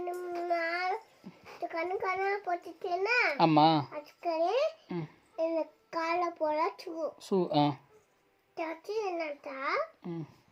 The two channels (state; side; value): identical; both; correlation 1.00